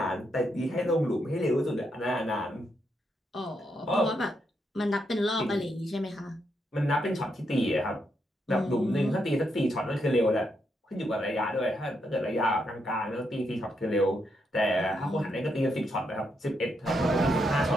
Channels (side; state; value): both; normal; correlation 0.80